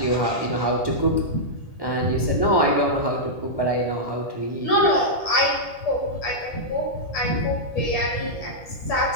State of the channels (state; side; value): late; right; 1.8 ms